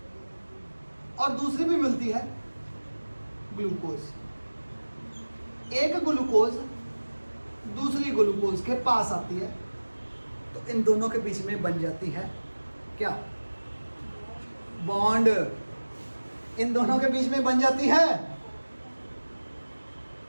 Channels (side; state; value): both; inverted; correlation -1.00